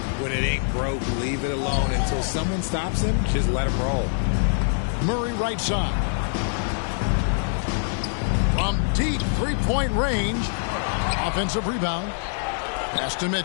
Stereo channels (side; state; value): right; silent; digital silence